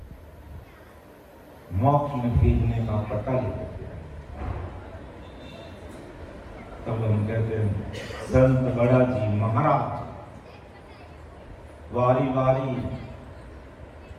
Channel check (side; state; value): both; identical; correlation 1.00